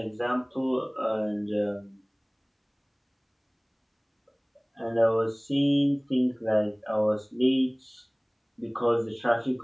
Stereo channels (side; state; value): both; identical; correlation 1.00